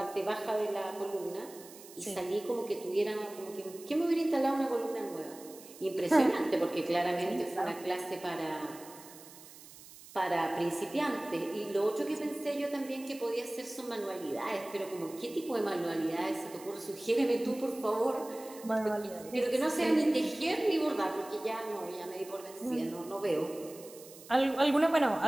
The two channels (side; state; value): right; noise; hiss, 18 dB below the sound